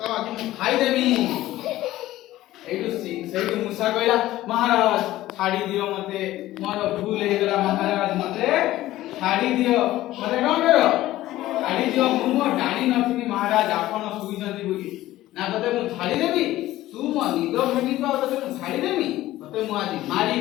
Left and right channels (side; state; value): right; quieter; 15.5 dB